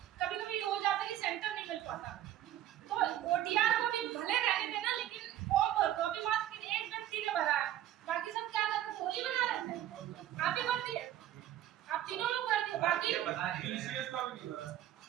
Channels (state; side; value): quieter; left; 12.5 dB